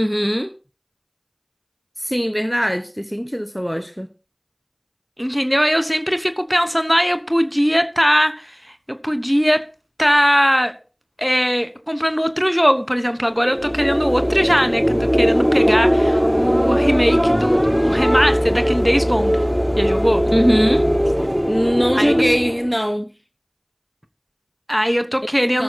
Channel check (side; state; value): both; identical; correlation 1.00